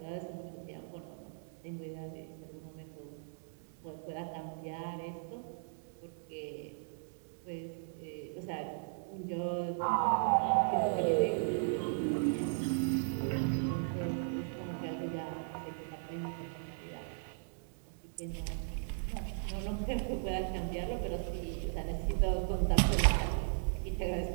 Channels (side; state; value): left; silent; digital silence